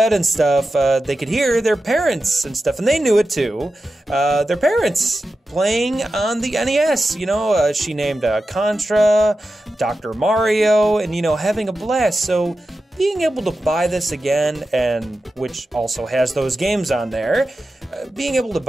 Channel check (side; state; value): both; normal; correlation 0.92